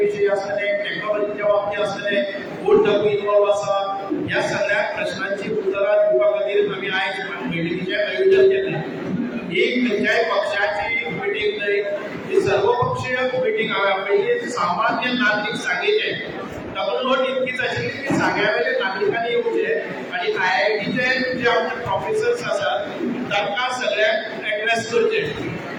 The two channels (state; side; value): identical; both; correlation 1.00